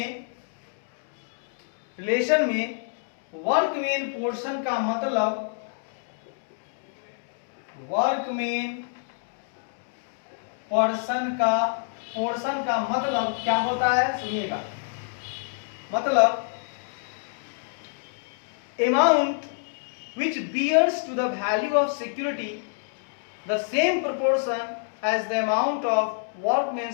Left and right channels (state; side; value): silent; right; digital silence